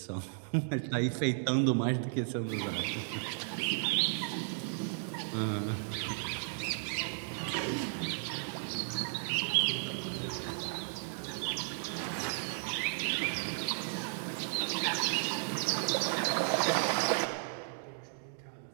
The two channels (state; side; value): silent; left; digital silence